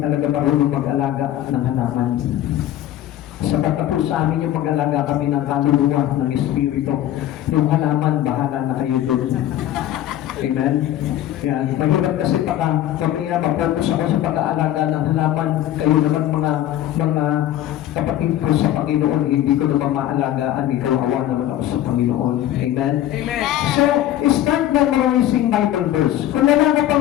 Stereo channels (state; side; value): quieter; right; 12.7 dB